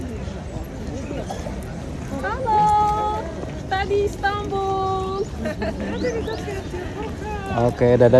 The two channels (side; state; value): both; identical; correlation 1.00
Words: Halo, tadi Istanbul. Oke,